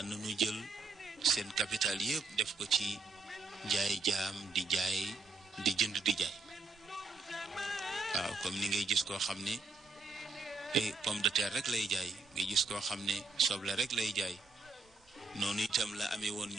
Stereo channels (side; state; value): left; quieter; 3.7 dB